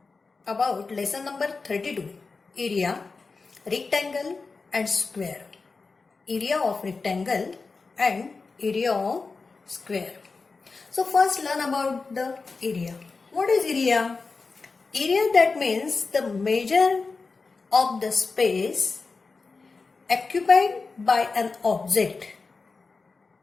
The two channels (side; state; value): right; quieter; 4.2 dB